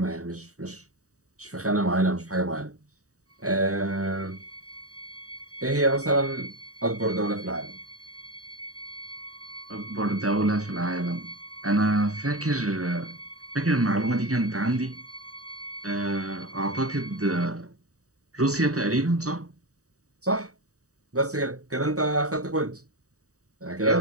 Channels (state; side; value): late; left; 0.66 ms